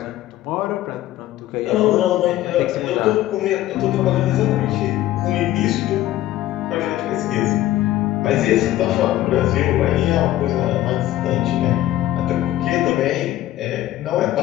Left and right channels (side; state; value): right; quieter; 14.3 dB